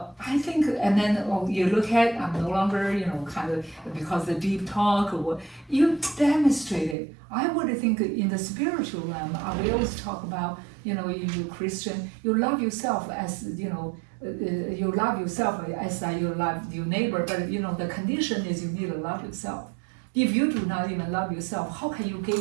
think, and then you look at, I'm no longer, you know, kind of, because the deep talk or what, you demonstrate it. I would think in the spiritual realm, we always talk about, you know, you Christian, you love yourself as, you know, you love yourself as you love your neighbor, but, you know, the condition is you need to love yourself. If you do not even love yourself, how can you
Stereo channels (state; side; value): drops out; left; at 7.0 s